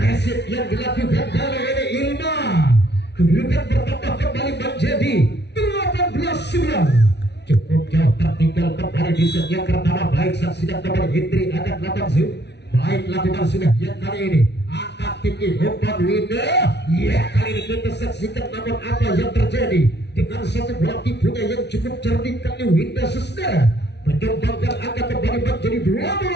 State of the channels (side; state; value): right; late; 0.50 ms